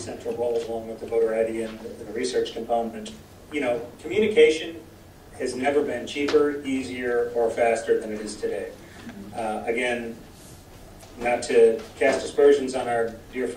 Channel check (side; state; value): both; identical; correlation 1.00